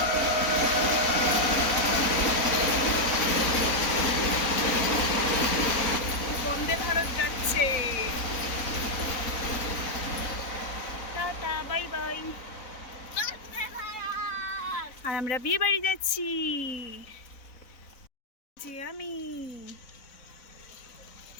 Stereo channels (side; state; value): right; late; 4.0 ms